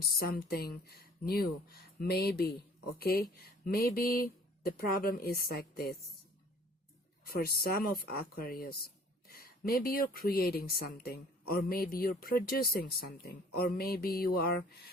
something new, maybe, okay. Maybe the problem is like this for some of Aquarius. maybe you're creating something, or maybe you're producing something, or maybe you are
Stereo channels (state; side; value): normal; both; correlation 0.53